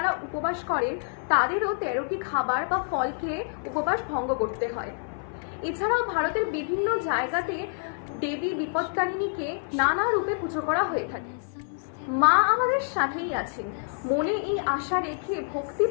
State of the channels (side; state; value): right; silent; 56 dB below the other